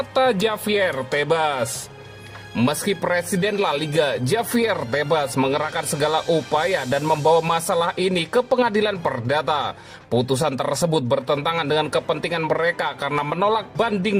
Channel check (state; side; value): identical; both; correlation 1.00